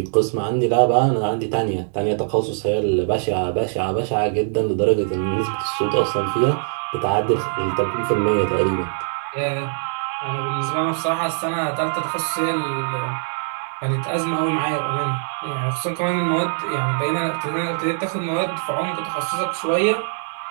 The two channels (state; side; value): silent; left; 64 dB below the other